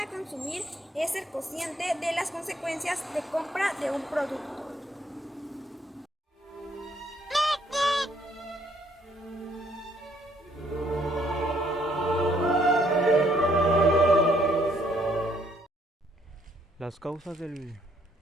consumir es ser consciente de las consecuencias de compra de un producto. Las causas del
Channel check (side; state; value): both; normal; correlation 0.67